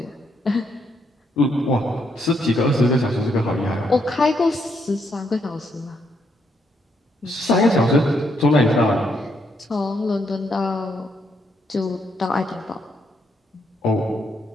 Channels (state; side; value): normal; both; correlation 0.76